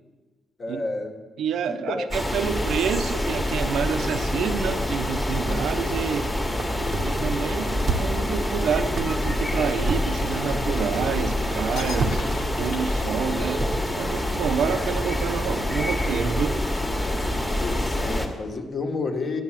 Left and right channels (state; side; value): normal; both; correlation 0.81